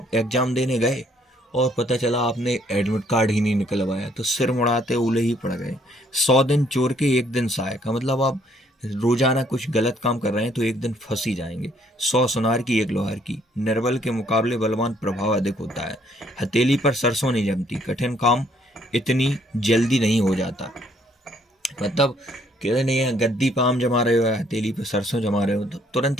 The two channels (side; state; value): both; normal; correlation 0.66